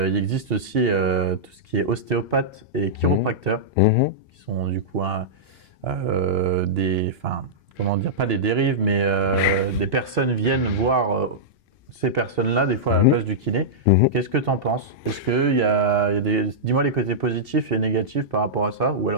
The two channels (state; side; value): normal; both; correlation -0.11